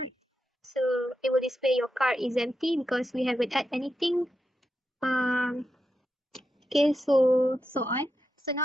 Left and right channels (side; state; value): both; normal; correlation 0.87